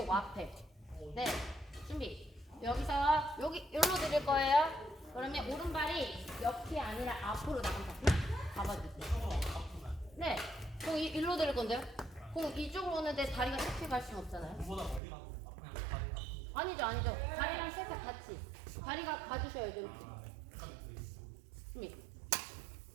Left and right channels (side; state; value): left; drops out; at 15.0 s